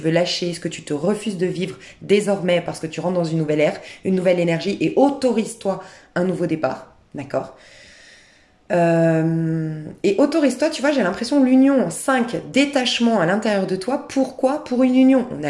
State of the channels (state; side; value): identical; both; correlation 1.00